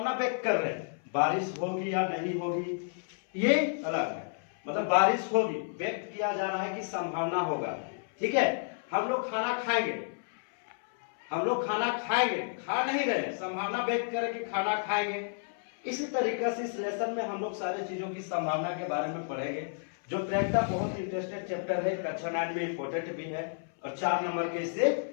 व्यक्त कर रहे हैं बारिश होगी या नहीं होगी, ये अलग है। मतलब बारिश होगी व्यक्त किया जा रहा है कि संभावना होगा। ठीक है। हम लोग खाना खाएंगे, हम लोग खाना खाएंगे, खा नहीं रहे, संभावना व्यक्त करें कि खाना खाएंगे। इसी तरीके से इस लेसन में हम लोग सारी चीजों की संभावना के बारे में पढ़ेंगे। जो प्रैक्टा बहुत इंटरेस्टेड चैप्टर है, कक्षा 9 में इंपोर्टेंट भी है और 4 नंबर के इससे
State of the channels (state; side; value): silent; right; 57 dB below the other